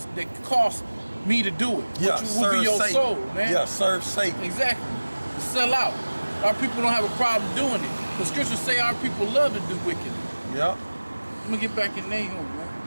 that costs me to do it. Yeah, which will be your Satan. soul, man. Yeah, serve Satan. Exactly. Sell out. Our people don't have a problem doing it. The scriptures say our people love to do wicked. Yeah. Let me get back in Nahum, man.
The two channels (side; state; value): both; inverted; correlation -1.00